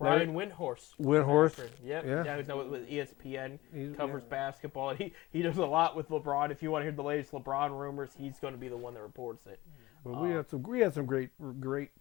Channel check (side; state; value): right; quieter; 18.9 dB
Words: Windhorst. Windhorst, Yep. yeah. Yeah, who's now with ESPN. He's- Covers yeah. basketball. And he does a lot with LeBron. If you want to hear the latest LeBron rumors, he's going to be the one that reports it. But we had some great